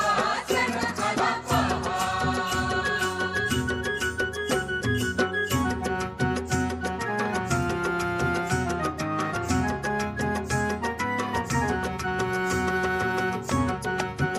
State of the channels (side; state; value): both; identical; correlation 1.00